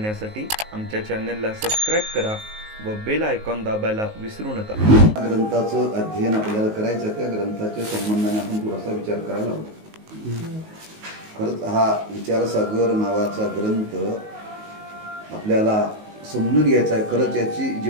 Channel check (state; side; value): late; left; 19 ms